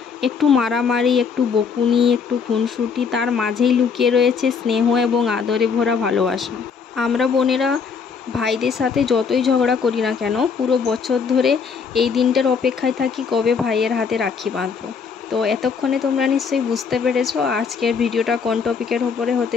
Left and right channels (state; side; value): quieter; right; 5.9 dB